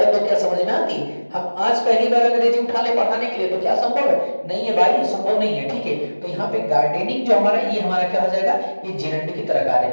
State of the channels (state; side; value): inverted; both; correlation -1.00